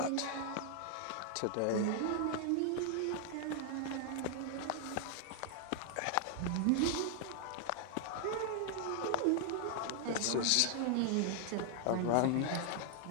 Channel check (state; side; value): different; both; correlation 0.00